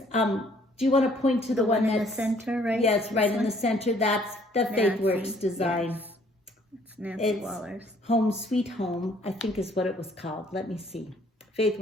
do you want to point to the one in that's the center, right? Yes, right in the center. That's the Faithwurks design. It's Nancy It's Wahler's. Home Sweet Home, I think is what it was called. Let me see.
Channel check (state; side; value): normal; both; correlation 0.61